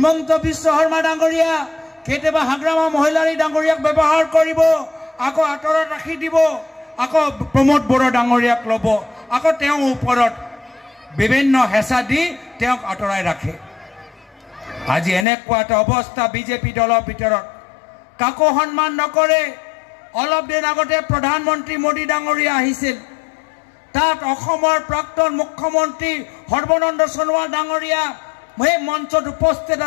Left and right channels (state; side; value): drops out; right; at 15.2 s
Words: বিশ্ব শৰ্মা ডাঙৰীয়া কেতিয়াবা হাগ্ৰামা মহিলাৰী ডাঙৰীয়াক ব্যৱহাৰ কৰিব আকৌ আঁতৰত ৰাখি দিব আকৌ প্ৰমোদ বড়ো ডাঙৰীয়াক ল'ব আকৌ তেওঁৰ ওপৰত বিভিন্ন হেঁচা দি তেওঁক আঁতৰাই ৰাখে আজি এনেকুৱা এটা অৱস্থা বিজেপি দলৰ ভিতৰত কাকো সন্মান নকৰে অলপ দিন আগতে প্ৰধানমন্ত্ৰী মোদী ডাঙৰীয়া আহিছিল তাত অসমৰ প্ৰাক্তন মুখ্যমন্ত্ৰী সৰ্বানন্দ সোণোৱাল ডাঙৰীয়া সেই মঞ্চত উপস্থিত